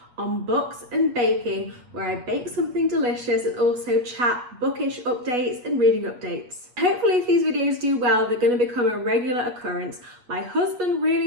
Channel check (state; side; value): late; left; 8.3 ms